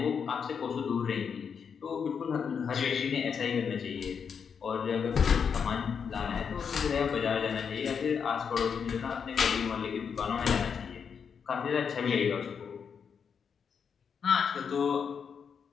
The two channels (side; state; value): right; quieter; 6.7 dB